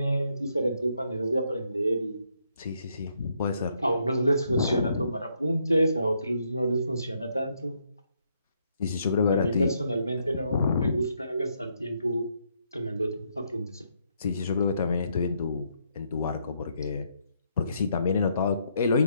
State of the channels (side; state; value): both; inverted; correlation -0.74